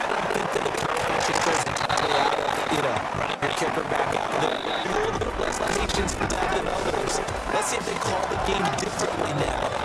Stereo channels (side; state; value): both; identical; correlation 1.00